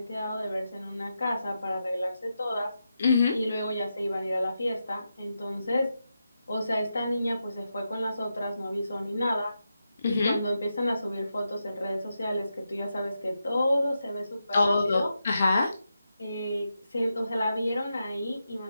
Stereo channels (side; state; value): both; inverted; correlation -0.87